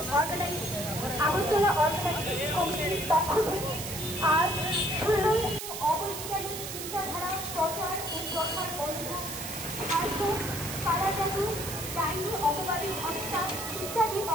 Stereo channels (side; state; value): right; noise; hiss, 7 dB below the sound